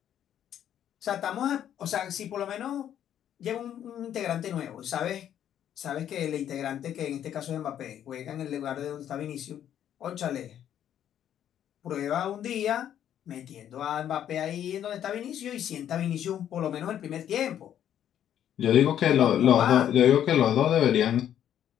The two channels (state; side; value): quieter; right; 10.3 dB